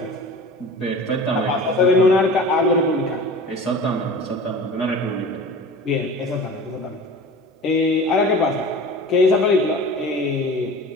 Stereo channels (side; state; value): both; normal; correlation 0.38